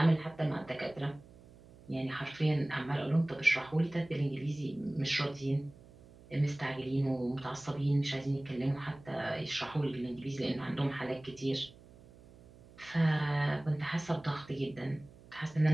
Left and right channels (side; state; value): right; noise; hum, 22 dB below the sound